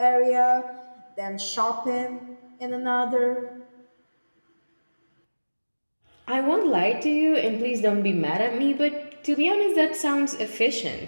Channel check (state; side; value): inverted; both; correlation -1.00